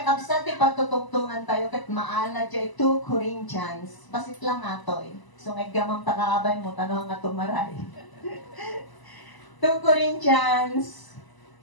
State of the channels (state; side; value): late; right; 1.0 ms